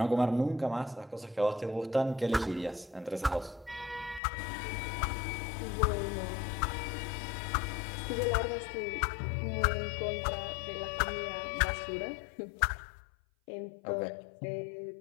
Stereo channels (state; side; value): drops out; right; at 4.2 s